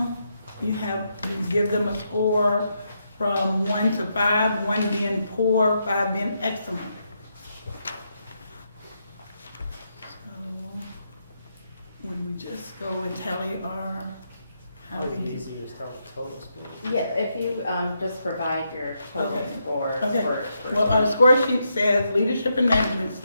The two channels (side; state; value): both; inverted; correlation -0.81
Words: you give them a score from 1 to 5, 1 being poor, 5 being excellent. So, would we just go and tally how we did? Easy to tell the total score. Yeah, if you just provide your total scores for Well, our score sheet says leadership and management